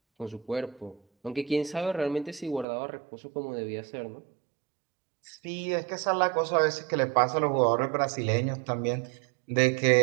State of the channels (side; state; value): left; drops out; at 2.7 s